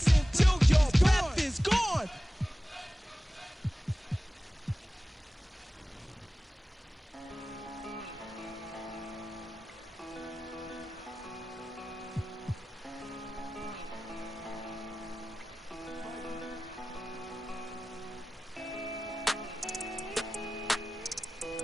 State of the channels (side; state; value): both; normal; correlation 0.96